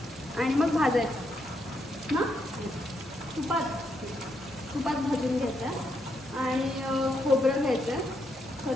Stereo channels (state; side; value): normal; both; correlation 0.79